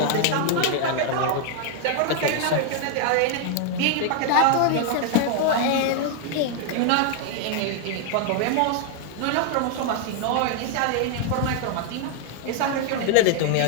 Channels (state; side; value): different; both; correlation 0.00